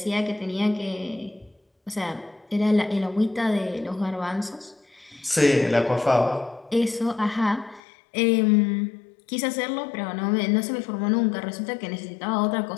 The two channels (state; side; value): drops out; right; at 7.8 s